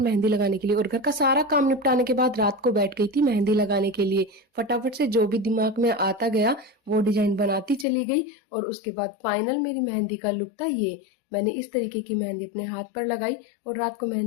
लगाने के लिए। और घर का सारा काम निपटाने के बाद रात को बैठ गई थी मेहंदी लगाने के लिए। फटाफट से जो भी दिमाग में आता गया वो डिजाइन बनाती चली गई। और उसके बाद फाइनल मेरी मेहंदी का लुक था ये। मैंने इस तरीके की मेहंदी अपने हाथ पर लगाई और रात को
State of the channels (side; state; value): right; drops out; at 7.9 s